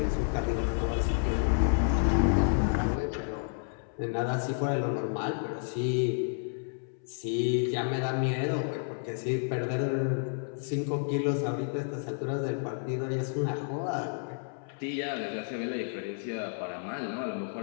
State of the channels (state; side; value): silent; right; 57 dB below the other